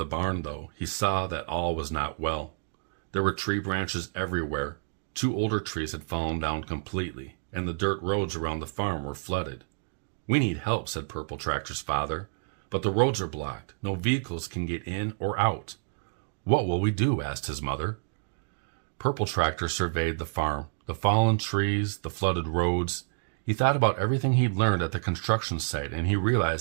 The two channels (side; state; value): left; silent; digital silence